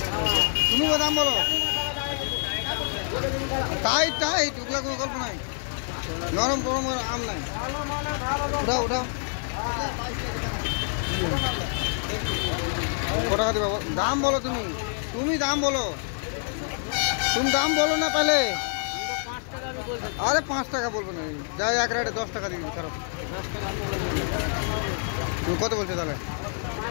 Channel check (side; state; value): right; silent; 60 dB below the other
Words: তুমি দাম বলো। টাইট টাইট ওগুলা কোনো গল্প নাই, নরম গরম আম নাই। উঠাও উঠাও কত টাকা দিবা দাম বলো। তুমি তুমি দাম বলো, তুমি দাম বলো না তাহলে। আরে 5 টাকা বলবো না, যাই এক রেটে 10 টাকা দিয়ে দিবি। খারাপ তুমি কত বলছো তাহলে?